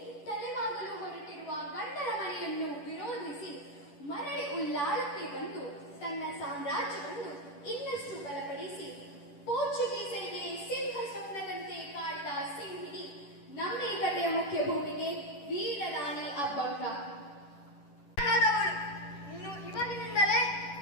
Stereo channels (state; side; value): late; right; 10 ms